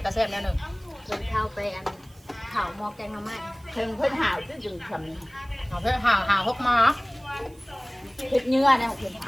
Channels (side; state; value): right; noise; hiss, 28 dB below the sound